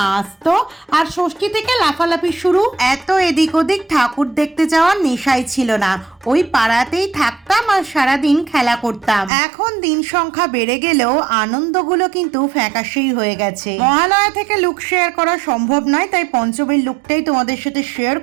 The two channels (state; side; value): drops out; left; at 9.3 s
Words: আসতো, আর ষষ্ঠী থেকে লাফালাফি শুরু। এত এদিক ওদিক ঠাকুর দেখতে যাওয়ার নেশাই ছিল না, ওই পাড়াতেই থাকতাম আর সারাদিন খেলা করতাম। এখন দিন সংখ্যা বেড়ে গেলেও আনন্দগুলো কিন্তু ফ্যাকাশেই হয়ে গেছে। মহালয়া থেকে লুক শেয়ার করা সম্ভব নয়, তাই পঞ্চমীর লুকটাই তোমাদের সাথে শেয়ার